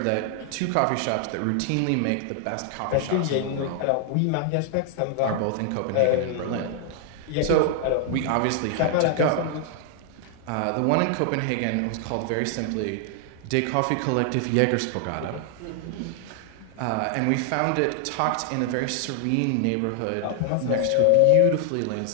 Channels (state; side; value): different; both; correlation 0.00